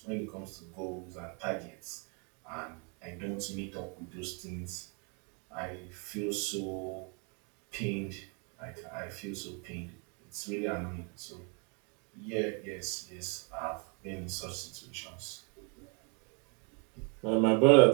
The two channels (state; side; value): quieter; left; 36.1 dB